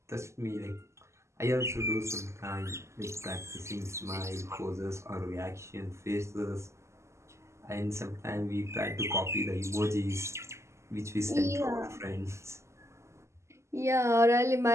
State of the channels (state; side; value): late; left; 0.13 ms